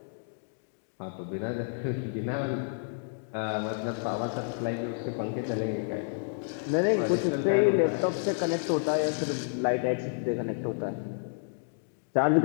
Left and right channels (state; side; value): silent; right; digital silence